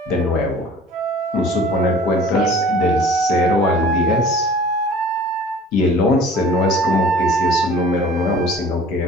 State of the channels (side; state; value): both; normal; correlation 0.47